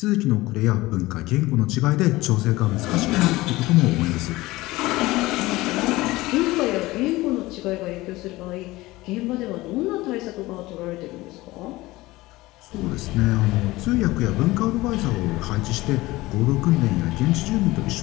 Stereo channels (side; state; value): right; quieter; 19.4 dB